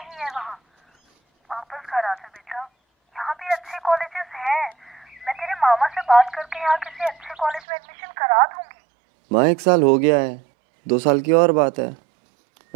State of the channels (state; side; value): drops out; left; at 7.6 s